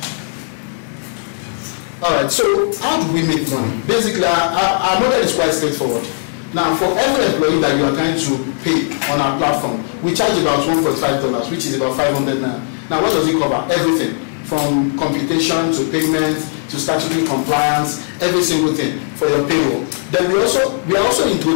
All right, so how do we make money? Basically, our model is quite straightforward. Now, for every employee that you are trying to pay on our platform, we charge about $1.5, which is about 500 naira. Now, what does it cover? Everything, from computation to payment to statutory compliance, every single thing for your payroll. Then we are also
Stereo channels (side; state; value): right; silent; digital silence